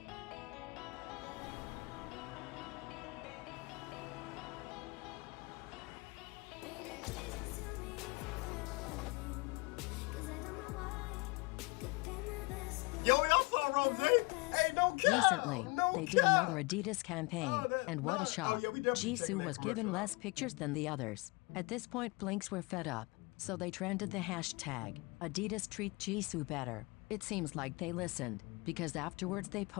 Yo, y'all saw Rose? Hey, no cap! Recently, No they did cap! another Adidas campaign, and what a shock. yeah, we definitely Jisoo checked that was given commercial less pictures than the others. At this point, Blinks were fed up, so they trended the hashtag, Adidas treat Jisoo better. It seems like they listened, because afterwards they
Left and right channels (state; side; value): quieter; right; 26.4 dB